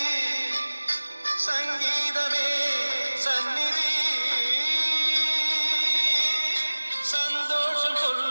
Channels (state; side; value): inverted; both; correlation -1.00